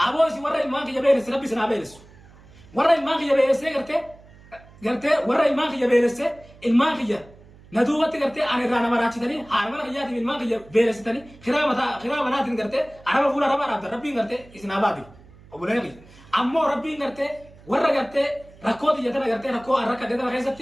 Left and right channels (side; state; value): right; noise; hum, 24 dB below the sound